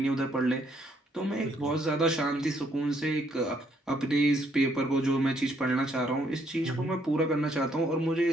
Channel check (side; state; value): both; normal; correlation 0.70